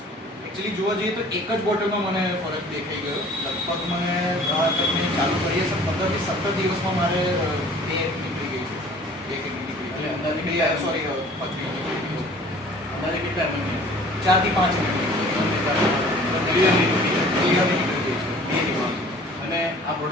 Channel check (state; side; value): normal; both; correlation 0.49